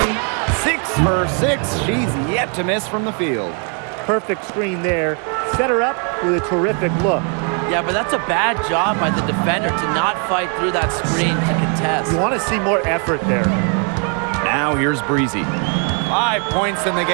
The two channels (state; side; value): quieter; left; 39.9 dB